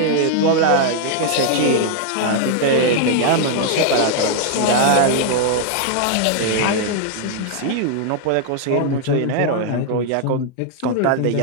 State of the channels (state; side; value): different; both; correlation -0.01